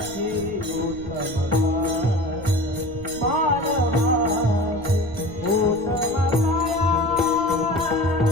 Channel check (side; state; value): right; noise; rumble, 15 dB below the sound